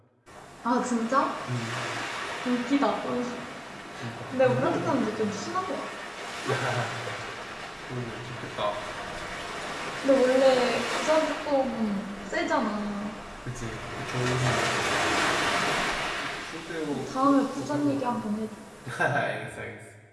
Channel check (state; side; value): identical; both; correlation 1.00